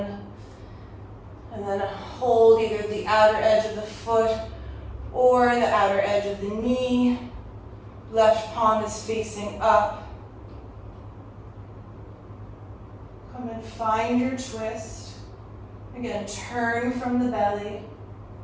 And then hold either the outer edge of the foot or the outer edge of the knee. Left palm is facing up. Come and find your twist. Again, turn from the belly.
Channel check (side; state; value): both; identical; correlation 1.00